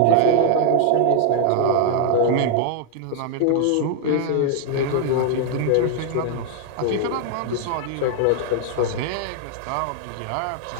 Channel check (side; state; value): both; different; correlation 0.00